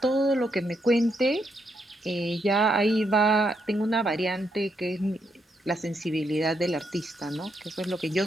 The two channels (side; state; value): both; normal; correlation 0.78